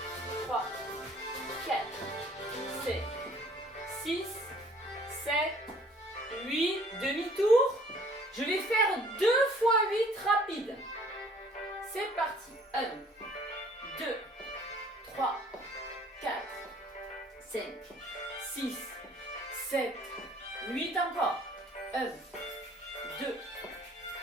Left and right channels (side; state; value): both; normal; correlation 0.56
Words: 3, 4, 5, 6, 7, 8. Demi-tour. Je vais faire 2 fois 8 rapide. C'est parti. 1, 2, 3, 4, 5, 6, 7, 8 encore. 1, 2,